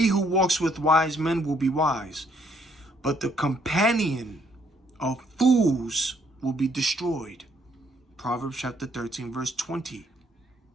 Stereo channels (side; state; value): both; normal; correlation 0.69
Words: who walks with wise men will be wise, but the companion of fools will be destroyed. Proverbs chapter 13, verse 20.